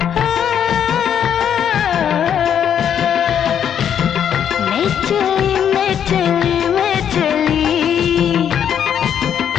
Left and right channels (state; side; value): quieter; right; 8.9 dB